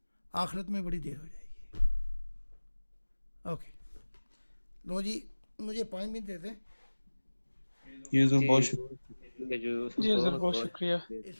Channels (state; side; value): inverted; both; correlation -1.00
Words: آخرت میں بڑی دیر ہو جائے گی. اوکے لو جی, مجھے 5 منٹ دے دیں. یہ بہت شکریہ. جی سر, بہت شکریہ.